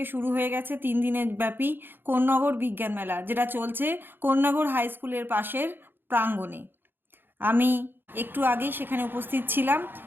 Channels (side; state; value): left; late; 0.099 ms